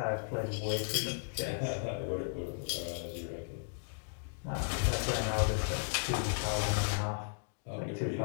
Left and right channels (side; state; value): right; silent; digital silence